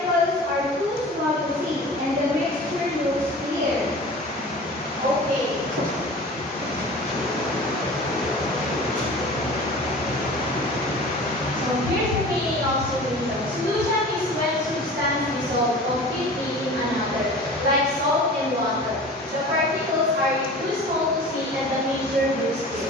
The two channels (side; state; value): both; normal; correlation 0.39